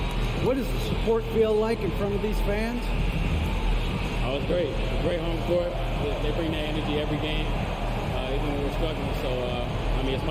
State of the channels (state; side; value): identical; both; correlation 1.00